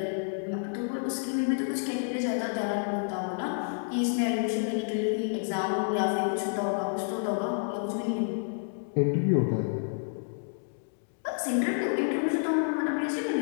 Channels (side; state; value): right; silent; digital silence